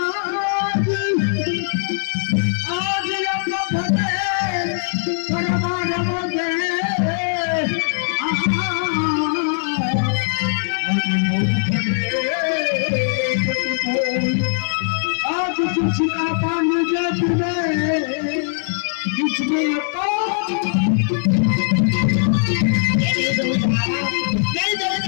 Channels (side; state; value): right; silent; digital silence